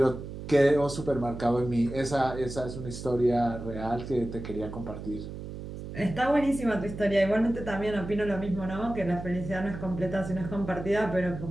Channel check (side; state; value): right; noise; hum, 9 dB below the sound